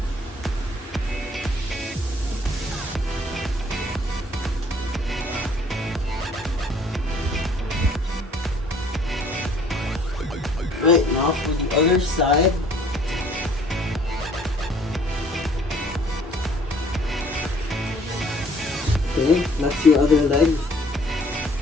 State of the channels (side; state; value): both; normal; correlation 0.58